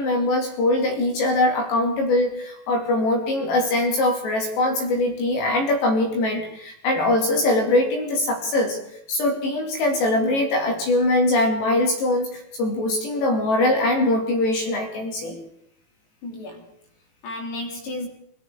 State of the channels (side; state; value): right; late; 18 ms